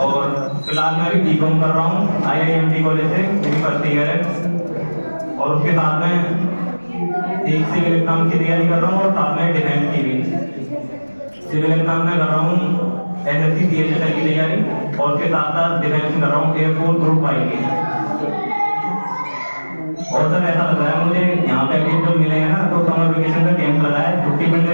फिलहाल मैं अभी B.Com कर रहा हूँ IIMT कॉलेज से, मेरी फर्स्ट ईयर है, और उसके साथ में एक सिविल एग्जाम की तैयारी कर रहा हूँ और साथ में डिफेंस की भी। सिविल एग्जाम में कर रहा हूँ SSC CHSL की तैयारी, और उसके साथ साथ डिफेंस में कर रहा हूँ एयरफोर्स ग्रुप 5 की। और सर ऐसा लग रहा है मुझे यहाँ पे अभी जो मिले हैं ना, तो समर वेकेशन का कैंप लगा है, छुट्टी मिलने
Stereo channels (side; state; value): both; inverted; correlation -1.00